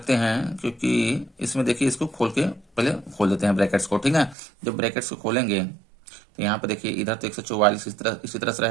हैं, क्योंकि इसमें देखिए इसको खोल के पहले खोल देते हैं ब्रैकेट्स को, ठीक है। जब ब्रैकेट्स को खोलेंगे तो यहाँ पे देखिए इधर तो 144 इसी तरह से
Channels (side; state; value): left; drops out; at 4.4 s